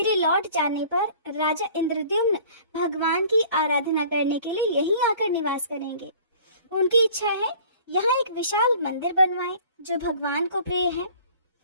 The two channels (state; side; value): inverted; both; correlation -0.49